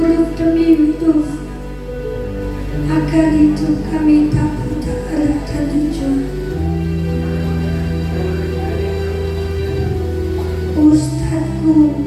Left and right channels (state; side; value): identical; both; correlation 1.00